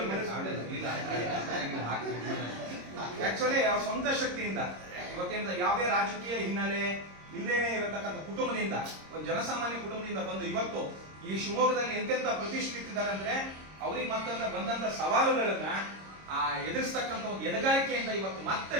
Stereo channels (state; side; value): late; left; 26 ms